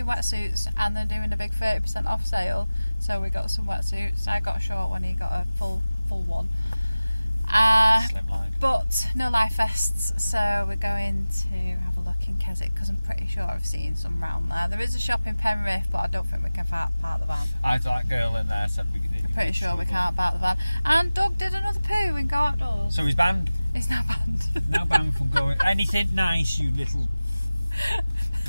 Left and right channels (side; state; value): both; inverted; correlation -0.97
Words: wetsuits, and they're doing a big 30% off sale, so we got some wetsuits. I got a short one, he got a full one. But no life vests, so we're going to have a look in Keswick because I'm pretty sure I've seen some round there. There is a shop in Penrith, but I don't think we can park the van. That girl in there said we could. I'm pretty sure we can't park the van. And Doug did another poo and go outdoors. So he's banned. He's now banned. Now banned from going anything nice, you little